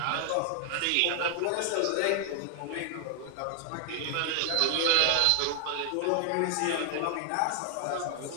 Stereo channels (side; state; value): both; different; correlation 0.00